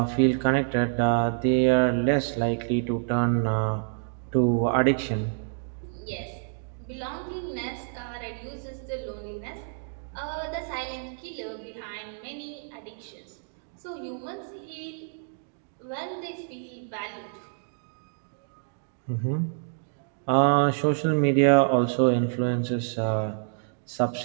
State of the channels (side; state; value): left; silent; digital silence